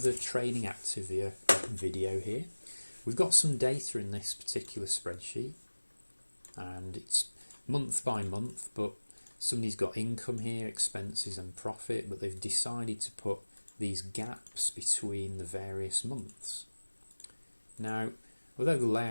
training Activia video here. We've got some data in this particular spreadsheet and it's month by month, but somebody's got income here, expenses and profit, but they've decided to put these gaps between the various months. Now, although the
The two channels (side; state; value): both; inverted; correlation -1.00